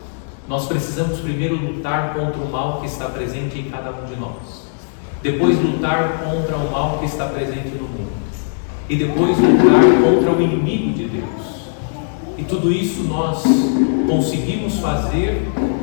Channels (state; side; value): silent; right; digital silence